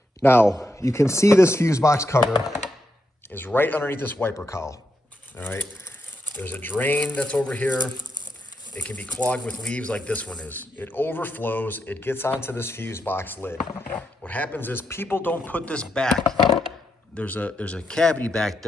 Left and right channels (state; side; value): normal; both; correlation 0.82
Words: Now, you can see this fuse box cover is right underneath this wiper cowl, all right? There's a drain that's over here. it can be clogged with leaves like this one is. It overflows, it gets onto this fuse box lid. What happens is people don't put this back. There's a cavity back